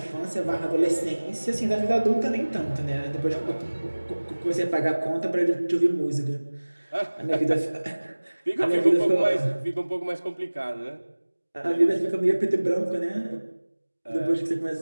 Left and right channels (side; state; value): both; inverted; correlation -1.00